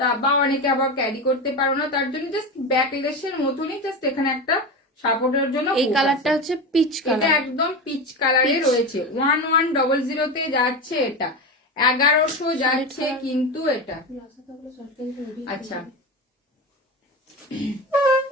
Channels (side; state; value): both; normal; correlation 0.21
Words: বা অনেকে আবার ক্যারি করতে পারো না, তার জন্য জাস্ট ব্যাকলেসের মতনই জাস্ট এখানে একটা সাপোর্টের জন্য। এই কালারটা হচ্ছে পিচ কালার, এটা একদম পিচ কালারে রয়েছে, 1100 যাচ্ছে এটা, 1100 যাচ্ছে কিন্তু এটা। আচ্ছা